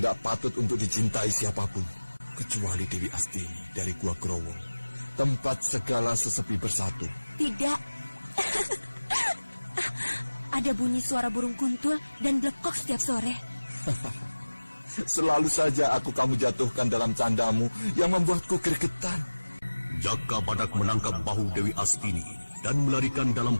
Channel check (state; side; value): inverted; both; correlation -1.00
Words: patut untuk dicintai siapapun, kecuali Dewi Astini dari Gua Growo, tempat segala sesepi bersatu. Tidak. Ada bunyi suara burung kuntul dan blekok setiap sore. Selalu saja kamu jatuhkan dalam candamu yang membuatku gregetan. Jaka Badak menangkap bahu Dewi Astini dan melarikan